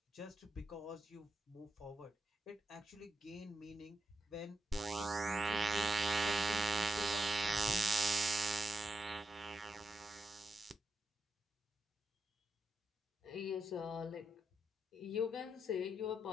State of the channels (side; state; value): both; normal; correlation 0.84